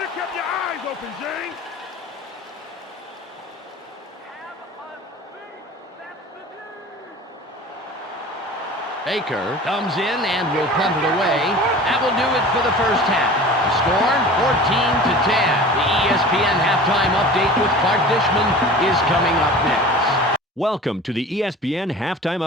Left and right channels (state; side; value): normal; both; correlation 0.40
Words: Baker comes in and will punt it away. That will do it for the first half. The score, 14-10. The ESPN halftime update with Clark Dishman is coming up next. Welcome to the ESPN Halftime